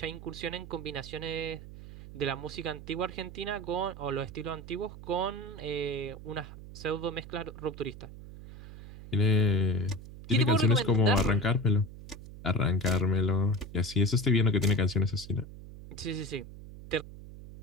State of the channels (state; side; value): noise; right; hum, 14 dB below the sound